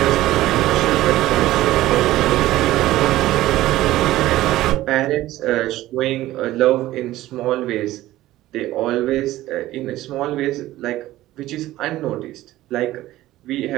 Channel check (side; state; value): left; quieter; 15.7 dB